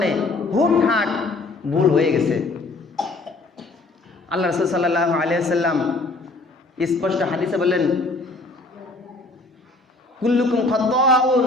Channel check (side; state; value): right; quieter; 3.2 dB